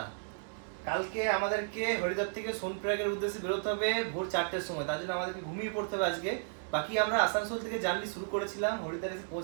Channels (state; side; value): silent; left; digital silence